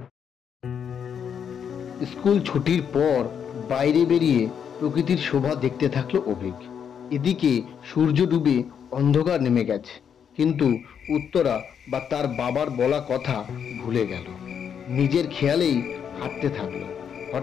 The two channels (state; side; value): quieter; right; 7.8 dB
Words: স্কুল ছুটির পর বাইরে বেরিয়ে প্রকৃতির শোভা দেখতে থাকলো অভিক। এদিকে সূর্য ডুবে অন্ধকার নেমে গেছে, কিন্তু উত্তরা বা তার বাবার বলা কথা ভুলে গেল। নিজের খেয়ালেই হাঁটতে থাকলো।